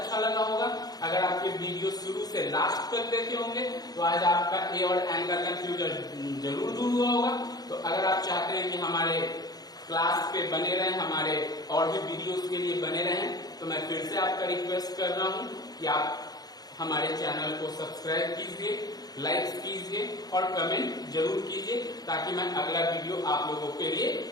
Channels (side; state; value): right; late; 0.19 ms